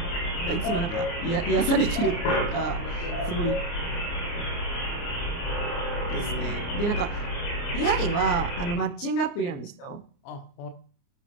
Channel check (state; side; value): late; right; 29 ms